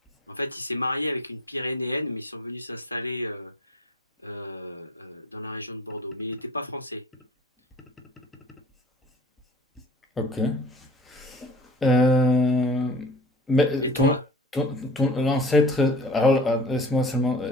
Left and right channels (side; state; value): both; normal; correlation 0.42